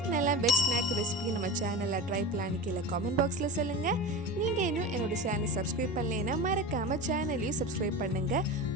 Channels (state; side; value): normal; both; correlation 0.28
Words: நல்லா வெஜ் ஸ்நாக் ரெசிபி நம்ம சேனலில் ட்ரை பண்ணலான்னு கீழே காமெண்ட் பாக்ஸில் சொல்லுங்கள். நீங்கள் இன்னும் என்னோடய சேனலை சப்ஸ்கிரைப் பண்ணலைன்னா மறக்காமல் சேனலையும் சப்ஸ்கிரைப் பண்ணுங்கள்.